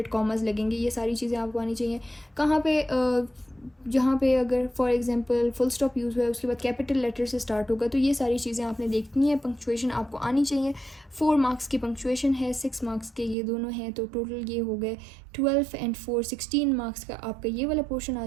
कॉमर्स लगेंगे, ये सारी चीज़ें आपको आनी चाहिए। कहाँ पे जहाँ पे अगर for example full stop use हुआ है उसके बाद कैपिटल लेटर से स्टार्ट होगा, तो ये सारी चीज़ें आपने देखनी है। पंक्चुएशन आपको आनी चाहिए। 4 मार्क्स की पंक्चुएशन है, 6 मार्क्स के ये दोनों हैं, तो टोटल ये हो गए 12 एंड 4 16 मार्क्स का आपका ये वाला पोर्शन आ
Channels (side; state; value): left; drops out; at 13.4 s